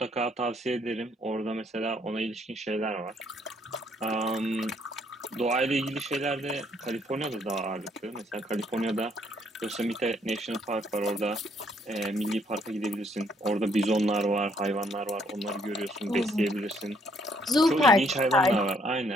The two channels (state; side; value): normal; both; correlation 0.68